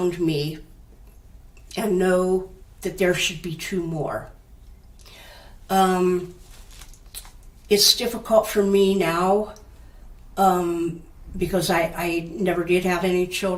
me and know that there should be two more. It's difficult for me now because I never did have any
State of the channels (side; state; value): both; identical; correlation 1.00